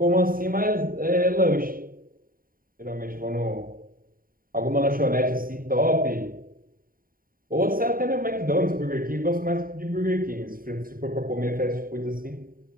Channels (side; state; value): left; late; 0.41 ms